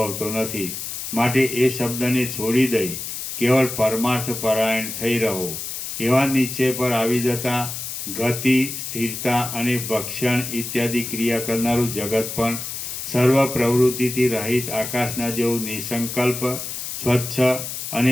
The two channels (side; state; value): left; noise; hiss, 6 dB below the sound